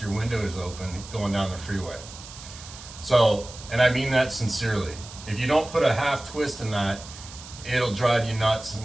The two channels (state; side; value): noise; right; hiss, 15 dB below the sound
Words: your windows open going down the freeway. So, and I mean that sincerely. If you don't put a half twist in that, it'll drive you nuts